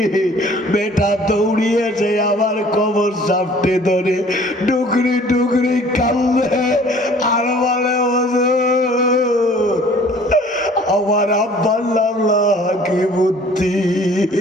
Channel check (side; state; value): both; normal; correlation 0.52